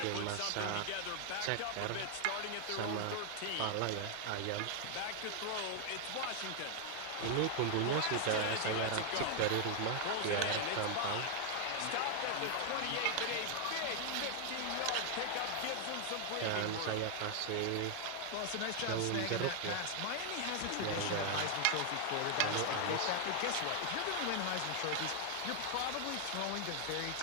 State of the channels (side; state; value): both; different; correlation 0.00